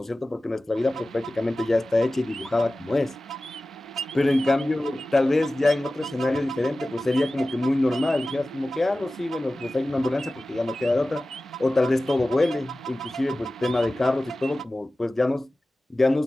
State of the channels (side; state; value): both; normal; correlation 0.96